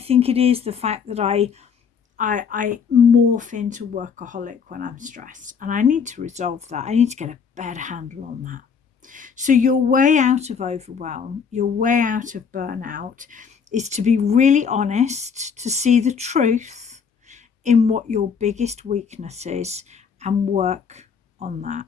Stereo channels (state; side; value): quieter; right; 6.4 dB